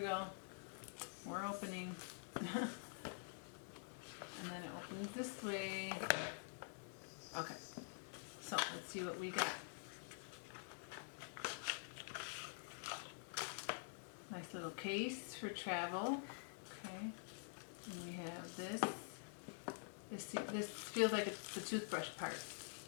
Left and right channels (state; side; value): silent; right; digital silence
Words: We're opening. And then it opens this way. Okay, so let's see what we got. Nice little case for travel. Okay, and we have this. This feels like it's the toothbrush part.